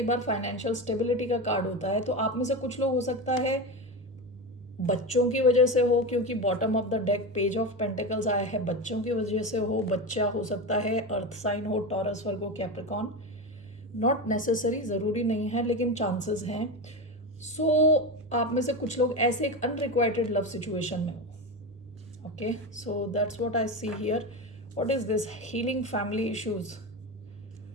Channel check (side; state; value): both; normal; correlation 0.20